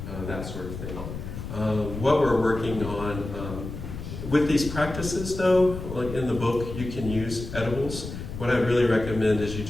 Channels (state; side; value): noise; left; rumble, 8 dB below the sound